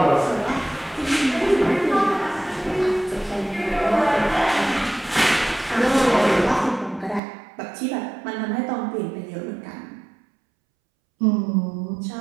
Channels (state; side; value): drops out; left; at 7.2 s